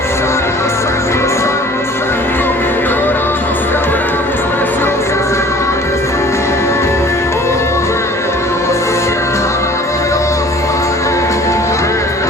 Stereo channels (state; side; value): normal; both; correlation 0.49